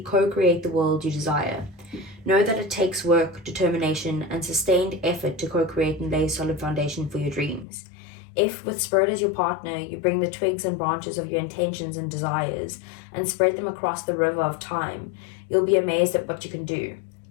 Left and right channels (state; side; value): drops out; right; at 7.7 s